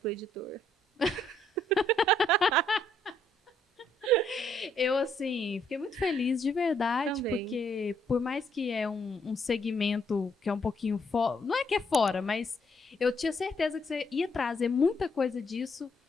editor. Eu, assim, fiquei muito feliz de verdade, Também. porque por mais que é um segmento que é um pouquinho fora, não é que é fora, mas eu tinha certeza que você ia trazer muita coisa disso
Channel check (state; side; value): normal; both; correlation 0.71